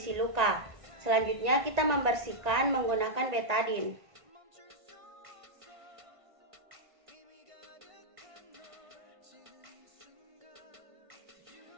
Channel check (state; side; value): late; left; 1.5 ms